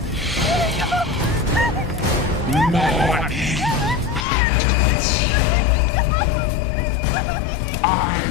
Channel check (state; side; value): drops out; right; at 4.2 s